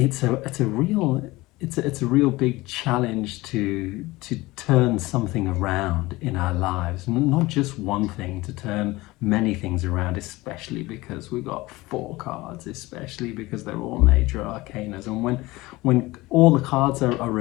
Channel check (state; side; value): quieter; right; 20.4 dB